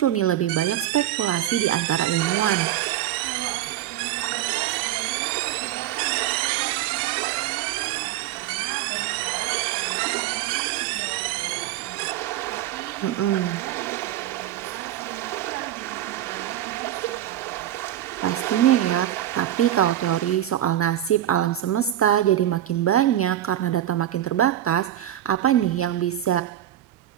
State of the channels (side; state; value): left; quieter; 12.4 dB